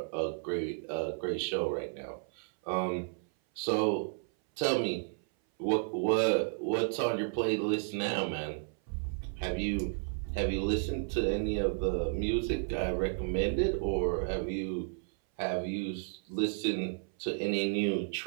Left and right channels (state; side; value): silent; left; 56 dB below the other